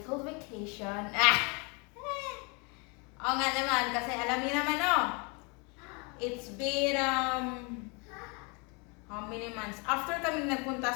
vacation. Oo nga naman, kasi alam niyo naman, it's been, how many months? After kami nagpunta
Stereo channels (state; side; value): quieter; right; 31.6 dB